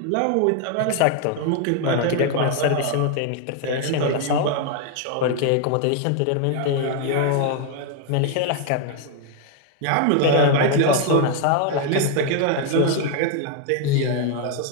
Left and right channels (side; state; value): both; different; correlation 0.00